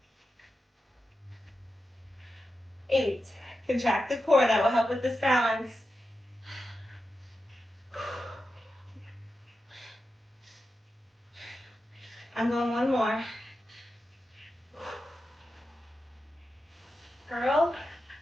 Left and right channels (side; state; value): both; normal; correlation 0.90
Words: 8. Contract the core. That will help with this balance. 'I'm going one more. Curl